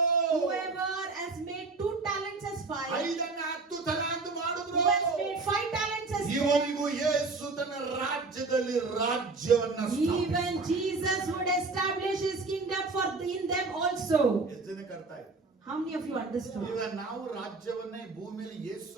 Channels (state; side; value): quieter; left; 3.8 dB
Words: Whoever has made 2 talents as 5, 5 10 ತಲಾಂತ ಮಾಡಿದ್ರು, who has made 5 talents as 10, ಇವರಿಗೂ ಯೇಸು ತನ್ನ ರಾಜ್ಯದಲ್ಲಿ ರಾಜ್ಯವನ್ನ even Jesus would establish his kingdom for in them also. ಎಷ್ಟು ಜನಕ್ಕೆ ಅರ್ಥ ಆಯ್ತು? How many of you understood? ಈಗ ನಾವು ರಾಜ್ಯವನ್ನ ಈ ಭೂಮಿಯಲ್ಲಿ ಯೇಸು